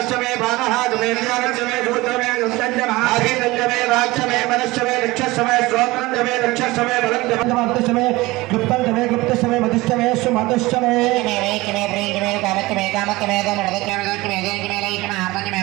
బాణహాదమే జ్ఞానష్టమే సూత్రమే దుష్టంజమే రాజ్యమే మనష్టమే నిక్షష్టమే శ్రోత్రంజమే నిక్షష్టమే బలంజమే గుప్తంజమే గుప్తష్టమే మధుష్టమే సుమధుష్టమే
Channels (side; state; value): left; quieter; 20.5 dB